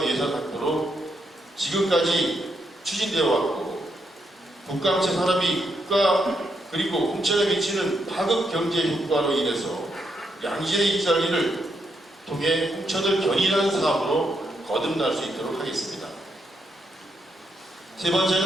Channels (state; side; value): normal; both; correlation 0.79